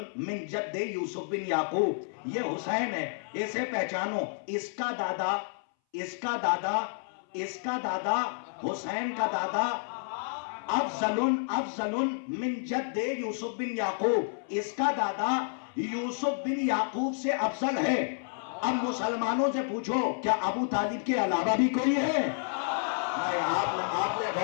من جد یوسف بن یعقوب, یہ حسین ہے, اسے پہچانو. اس کا دادا, اس کا دادا, اس کا دادا, حسین کا دادا افضل من جد یوسف بن یعقوب, اس کا دادا یوسف بن یعقوب سے افضل ہے. اب مسلمانوں سے پوچھو, کیا ابو طالب کے علاوہ بھی کوئی ہے؟ آپ نے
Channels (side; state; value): right; silent; 58 dB below the other